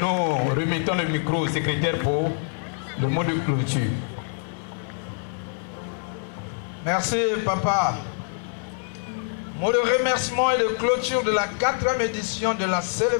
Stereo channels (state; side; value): silent; right; 60 dB below the other